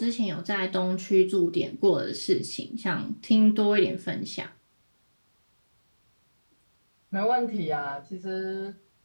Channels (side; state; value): both; inverted; correlation -1.00